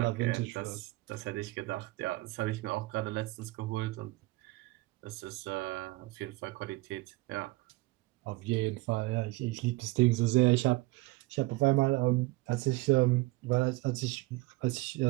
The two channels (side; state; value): left; quieter; 20.9 dB